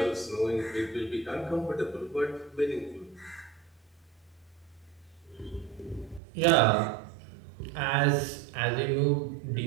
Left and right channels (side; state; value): left; drops out; at 6.2 s